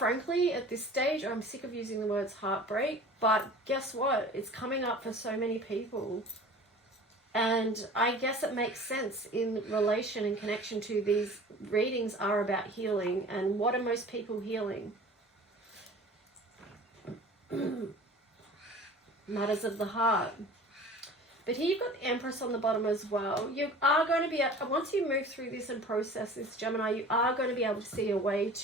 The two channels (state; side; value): normal; both; correlation 0.42